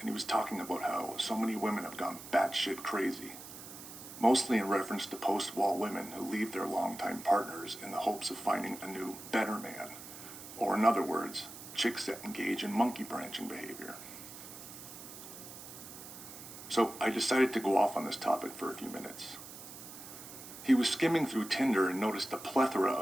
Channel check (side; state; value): right; noise; hiss, 13 dB below the sound